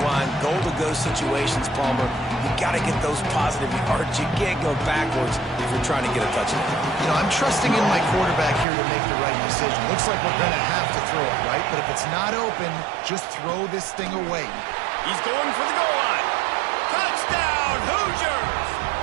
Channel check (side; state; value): left; drops out; at 8.7 s